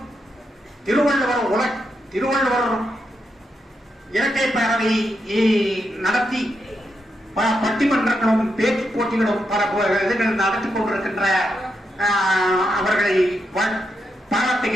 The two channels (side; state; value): both; normal; correlation 0.83